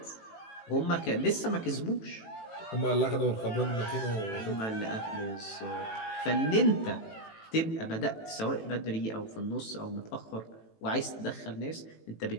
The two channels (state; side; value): late; right; 18 ms